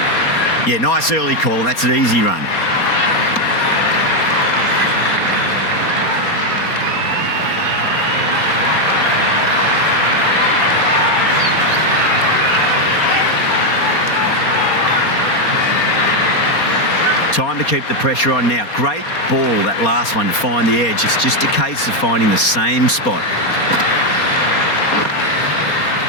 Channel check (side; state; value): right; late; 4.3 ms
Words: Yeah, nice early call. That's an easy run. Time to keep the pressure on now. Great ball, that last one, to find the edge. It's just a case of finding the same spot.